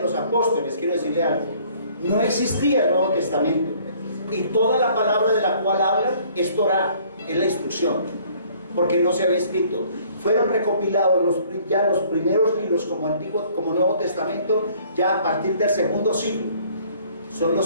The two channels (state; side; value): inverted; both; correlation -0.58